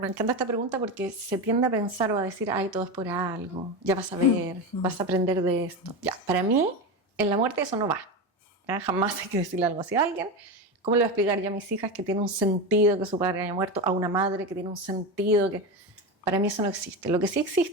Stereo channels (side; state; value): both; normal; correlation 0.19